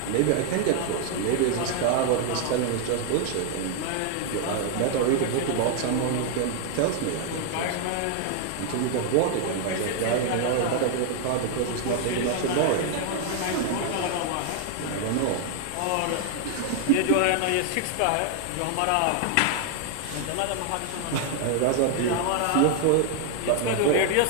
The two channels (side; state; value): both; different; correlation 0.00